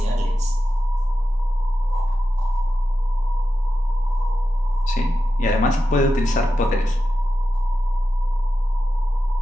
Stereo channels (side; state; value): both; normal; correlation 0.91